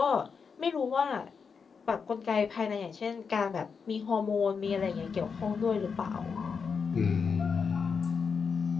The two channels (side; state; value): right; quieter; 5.7 dB